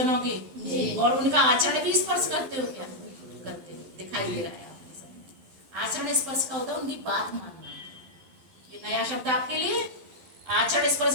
के जी, और उनका आचरण भी स्पर्श करते हो क्या? करते हो, दिखाई दे रहा है आपके सामने। आचरण स्पर्श का होता है उनकी बात मानना, ये नया शब्द आपके लिए। आचरण स्पर्श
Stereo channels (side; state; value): left; late; 11 ms